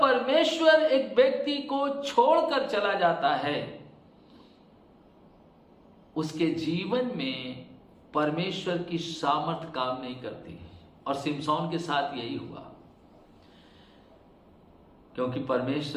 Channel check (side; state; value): both; identical; correlation 1.00